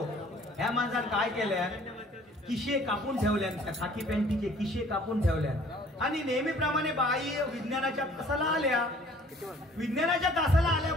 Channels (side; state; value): both; normal; correlation 0.55